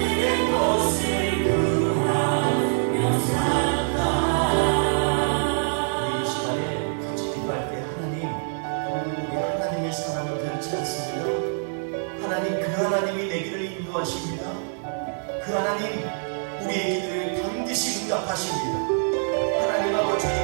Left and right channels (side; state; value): left; silent; digital silence